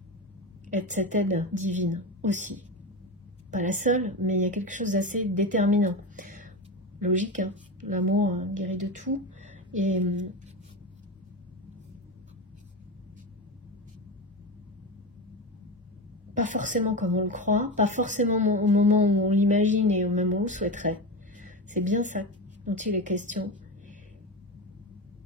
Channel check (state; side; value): normal; both; correlation 0.20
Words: être cette aide divine aussi. Pas la seule, mais il y a quelque chose d'assez déterminant. Logique, hein. L'amour guérit de tout. Et pas forcément comme on le croit, pas forcément au moment où on l'imagine et au moment où on le souhaiterait. C'est bien ça dont il est question.